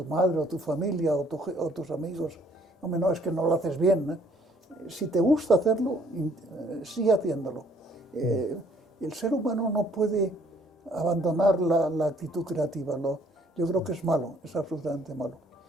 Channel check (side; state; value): both; normal; correlation 0.62